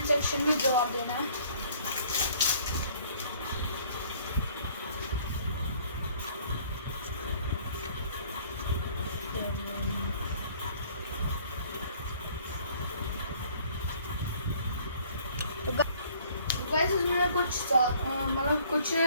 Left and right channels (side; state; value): both; inverted; correlation -0.58